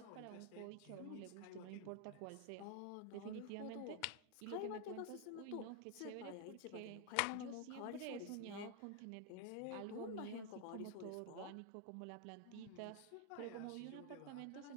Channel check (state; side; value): different; both; correlation 0.00